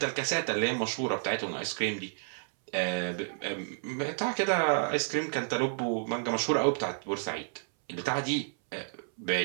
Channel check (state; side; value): silent; left; 57 dB below the other